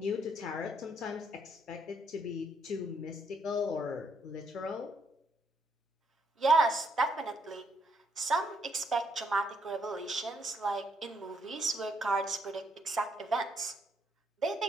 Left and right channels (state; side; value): normal; both; correlation 0.72